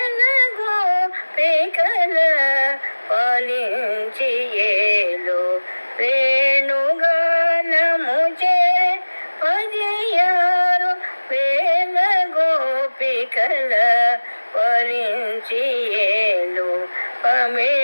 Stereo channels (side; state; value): both; inverted; correlation -1.00